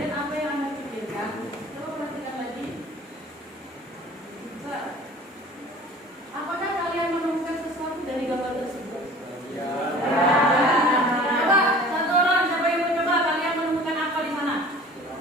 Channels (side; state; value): both; normal; correlation 0.45